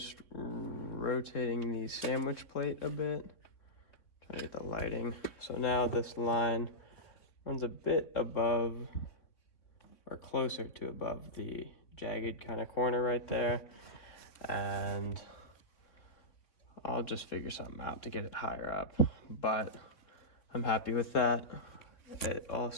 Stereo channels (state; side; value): late; right; 3.8 ms